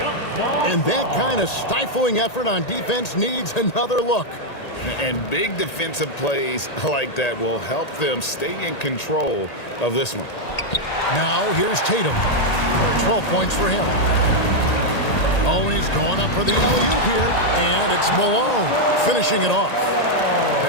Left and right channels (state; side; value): late; right; 1.8 ms